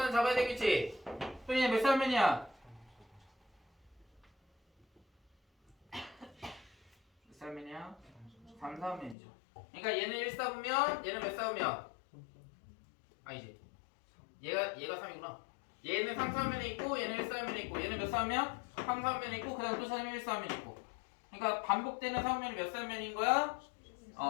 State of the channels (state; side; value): drops out; right; at 9.2 s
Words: 잡아야 되겠지? 그럼 얘는 몇 사분면이야? 몇 사분면이야? 3사분면이죠. 그러니까 얘는 1사분면, 얘는 몇 사분면? 아니지. 얘가 3이구나. 얘는 3사분면에 있고, 얘는 1사분면에 있고, 얘는 몇 사분면? 3사분면에 있고, 그 다음 또 찾으면 1사분면에 있고. 그러니까 반복되는 사분면이 몇 사분면인 거야?